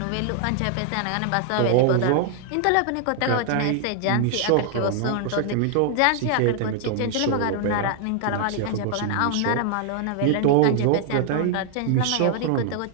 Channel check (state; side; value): different; both; correlation 0.00